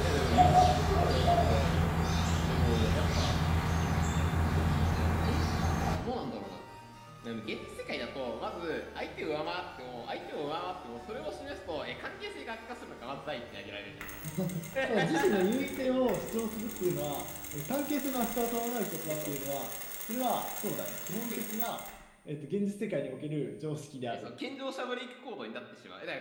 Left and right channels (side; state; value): both; identical; correlation 1.00